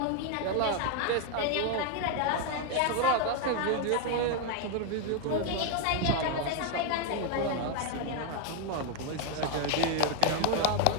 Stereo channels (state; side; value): different; both; correlation 0.01